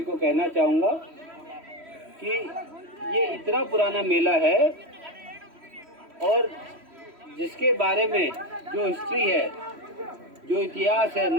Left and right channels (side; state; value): left; late; 3.1 ms